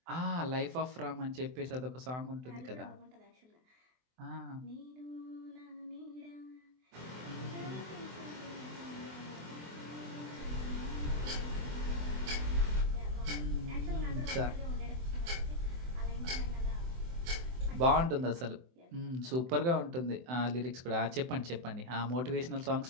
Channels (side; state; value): left; late; 24 ms